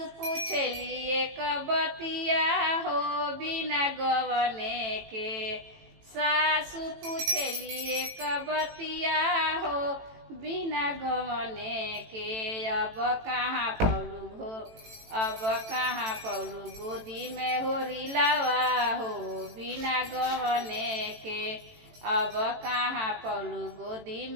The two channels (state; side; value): late; left; 18 ms